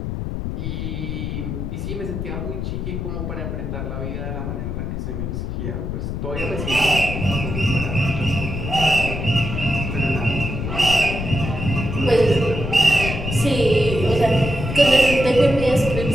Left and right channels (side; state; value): left; noise; rumble, 4 dB below the sound